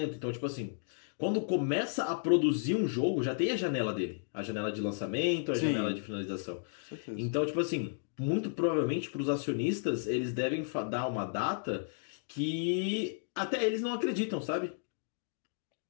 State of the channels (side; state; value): right; silent; digital silence